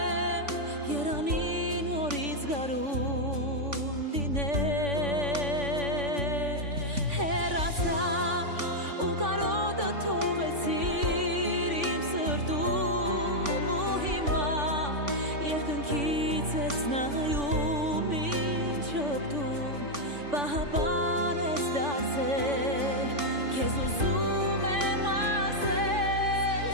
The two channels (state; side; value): late; left; 3.5 ms